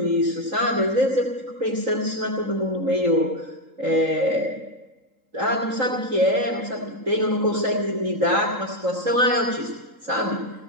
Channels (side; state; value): left; late; 3.8 ms